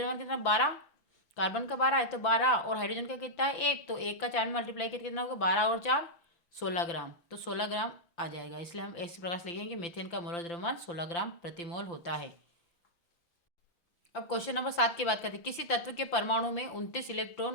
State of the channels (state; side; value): late; right; 5.8 ms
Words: कितना 12, कार्बन का 12 है तो 12 और हाइड्रोजन का कितना है 1, तो 1 का 4 में मल्टीप्लाई करके कितना होगा 12 और 4 16 ग्राम, तो 16 ग्राम आ जाएगा। इसलिए हम इस प्रकार से लिखेंगे मीथेन का मोलर द्रव्यमान 16 ग्राम प्रति मोल होता है। अब क्वेश्चन नंबर 7 की बात करते हैं। किसी तत्व के परमाणु में 29